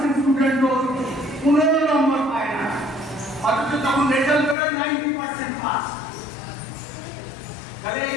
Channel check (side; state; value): right; drops out; at 4.5 s